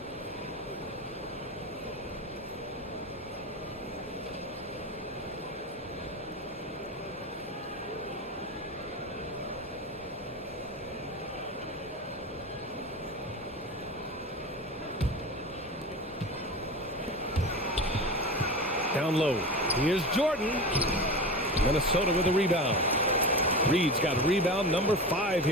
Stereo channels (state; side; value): normal; both; correlation 0.28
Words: Down low. Here's Jordan. Minnesota with a rebound. Reed's got rebound number 5